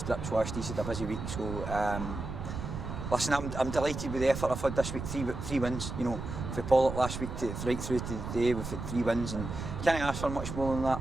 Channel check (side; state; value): right; noise; rumble, 6 dB below the sound